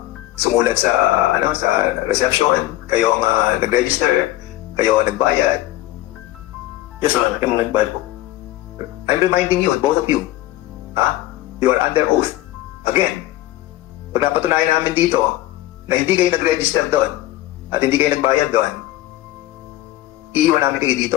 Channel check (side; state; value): right; quieter; 15.8 dB